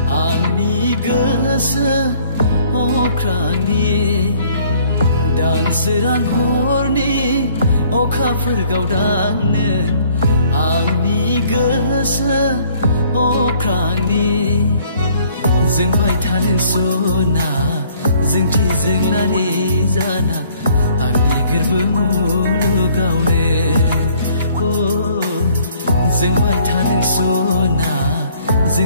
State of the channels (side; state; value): both; inverted; correlation -0.60